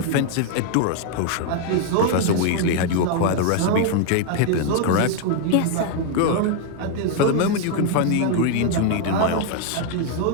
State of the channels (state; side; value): different; both; correlation 0.00